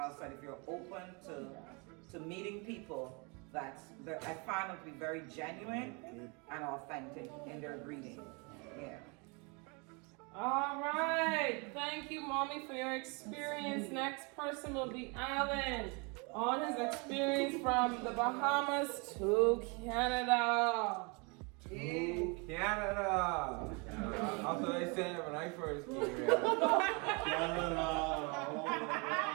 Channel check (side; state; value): left; quieter; 31.5 dB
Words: said, if you're open to meeting people, I find them to be very genuine and authentic in their greeting. Yeah. All right. Thank you, Mommy, for your experience. Next person will be Alan on his experience from the Bahamas to Canada. To Canada. That's what I said when I first came here.